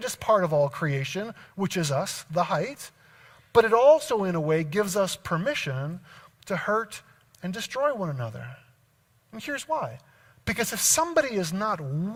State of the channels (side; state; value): both; identical; correlation 1.00